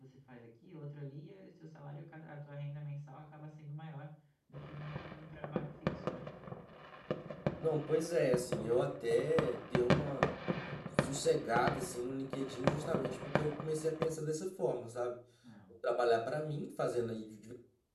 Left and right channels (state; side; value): identical; both; correlation 1.00